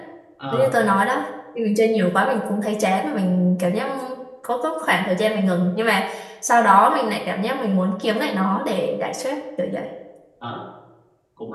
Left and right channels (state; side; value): identical; both; correlation 1.00